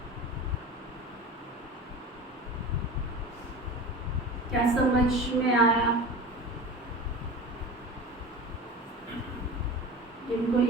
क्या समझ में आया? जिनको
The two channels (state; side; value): normal; both; correlation 0.33